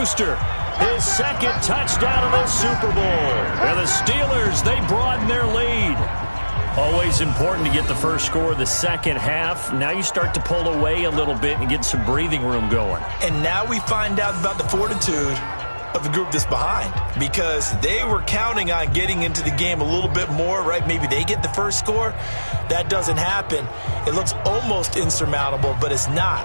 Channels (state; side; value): inverted; both; correlation -1.00